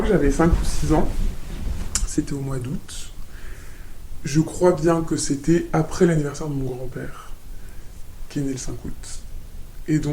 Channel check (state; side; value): identical; both; correlation 1.00